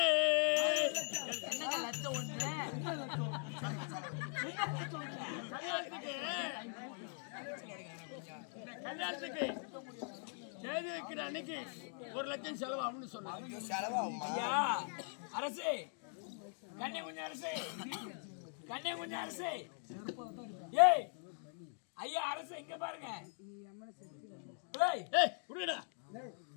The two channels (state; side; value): silent; right; 50 dB below the other